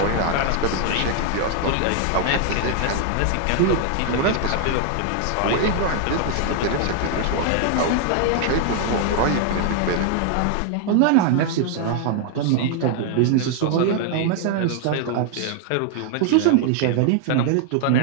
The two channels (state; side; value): different; both; correlation 0.00